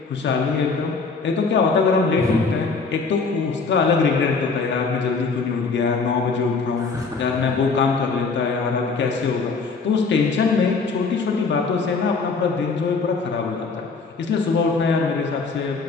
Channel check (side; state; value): right; quieter; 4.5 dB